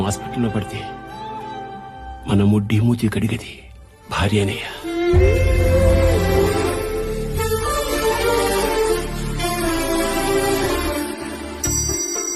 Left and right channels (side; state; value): both; identical; correlation 1.00